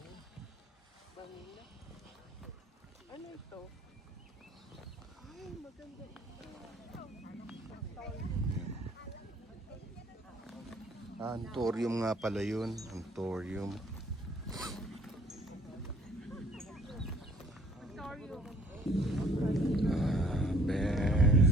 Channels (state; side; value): normal; both; correlation 0.57